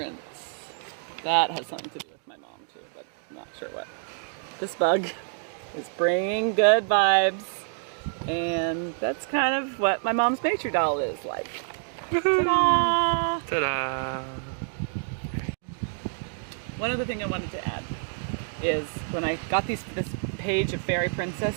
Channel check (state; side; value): silent; left; 60 dB below the other